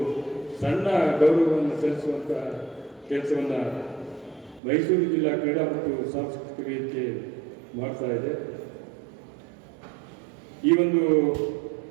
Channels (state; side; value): drops out; left; at 4.6 s